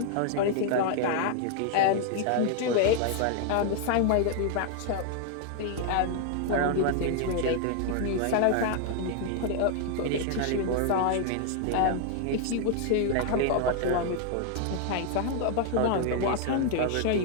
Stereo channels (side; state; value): both; different; correlation 0.00